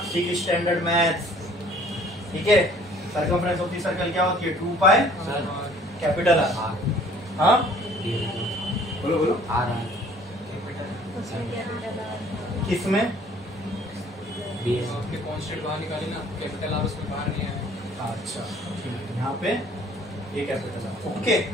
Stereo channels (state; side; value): normal; both; correlation 0.55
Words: सिक स्टैंडर्ड मैथ्स, ठीक है। सरकमफ्रेंस ऑफ द सर्कल क्या होती है 2 पाई कैपिटल R, हाँ बोलो बोलो किसमें आपके कांस्टेंट बाहर निकाली ना, कैपिटल R उसमें बाहर नहीं आया, अच्छा ठीक है, यहाँ पे ये कैपिटल R, ओके,